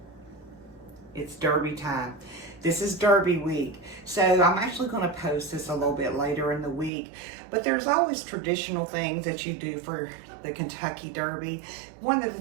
It's Derby time. This is Derby week. So I'm actually going to post this a little bit later in the week, but there's always traditional things that you do for the Kentucky Derby. One of the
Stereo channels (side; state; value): left; drops out; at 6.9 s